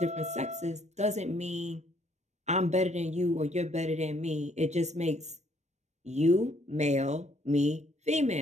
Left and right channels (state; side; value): late; left; 0.33 ms